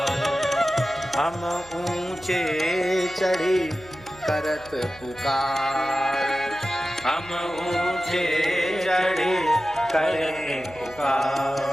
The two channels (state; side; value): noise; right; hum, 22 dB below the sound